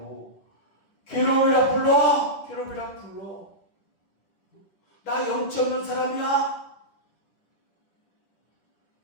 괴로움이라 불러. 나 염치 없는 사람이야.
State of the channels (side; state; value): right; late; 10 ms